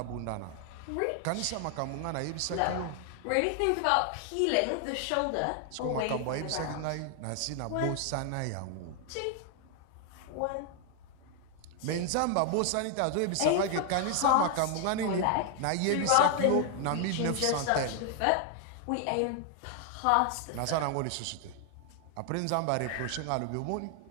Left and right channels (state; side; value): different; both; correlation 0.00